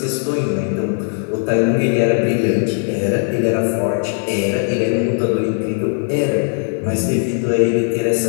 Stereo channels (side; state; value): right; silent; 57 dB below the other